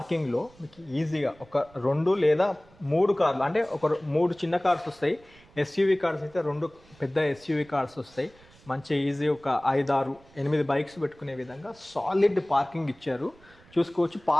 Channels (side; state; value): right; noise; rumble, 27 dB below the sound